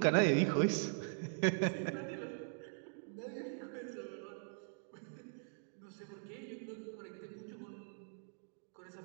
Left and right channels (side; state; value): left; silent; digital silence